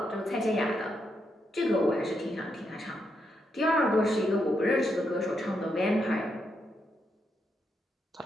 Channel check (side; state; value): both; normal; correlation 0.81